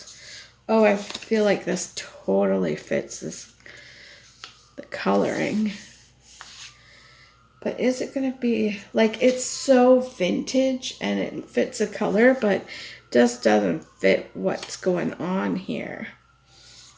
Oh, I feel like this totally fits the coloring. But is it going to be, like, it's so vintage and it fits the color, but just doesn't fit what's going on here.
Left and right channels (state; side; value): identical; both; correlation 1.00